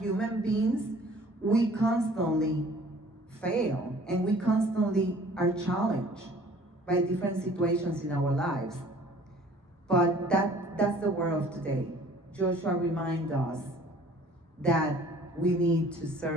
beings, we constantly fail and we constantly are challenged by different situations in our lives. But that's the word of today. Joshua reminds us that we need to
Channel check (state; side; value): normal; both; correlation 0.52